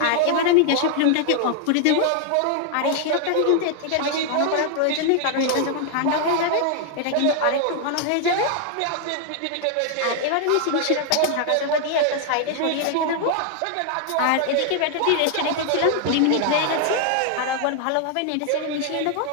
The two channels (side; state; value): both; different; correlation 0.00